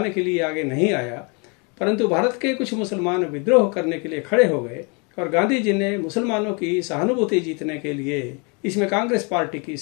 के लिए आगे नहीं आया, परंतु भारत के कुछ मुसलमान विद्रोह करने के लिए खड़े हो गए और गांधी जी ने मुसलमानों की सहानुभूति जीतने के लिए इसमें कांग्रेस पार्टी की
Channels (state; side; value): quieter; right; 33.0 dB